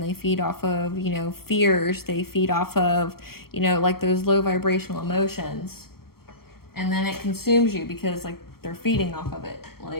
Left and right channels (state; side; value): late; right; 0.94 ms